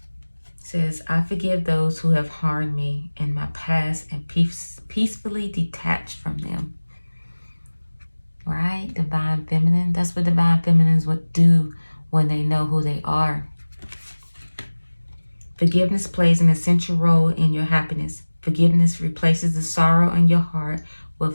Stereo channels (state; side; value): inverted; both; correlation -1.00